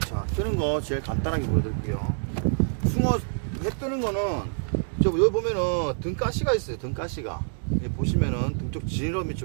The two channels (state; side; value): silent; left; digital silence